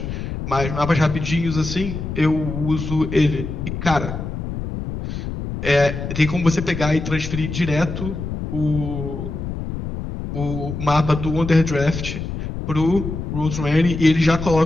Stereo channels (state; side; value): noise; left; rumble, 6 dB below the sound